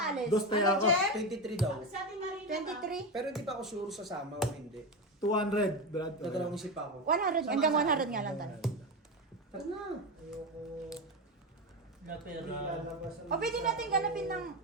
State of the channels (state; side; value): normal; both; correlation 0.16